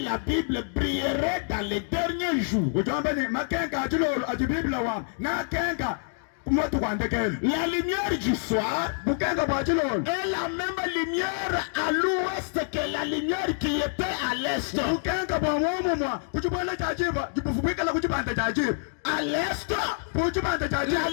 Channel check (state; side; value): silent; right; 60 dB below the other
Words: la Bible, brilleraient dans les derniers jours. La lumière du soir est la même lumière à l'ouest que la lumière qui était à l'est. À l'est, la